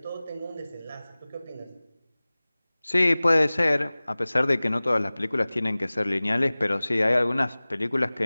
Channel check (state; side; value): inverted; both; correlation -0.99